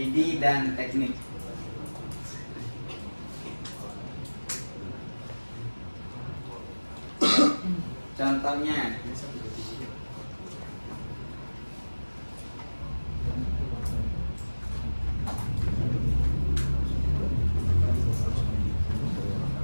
dan teknik. Contohnya,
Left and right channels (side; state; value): both; inverted; correlation -1.00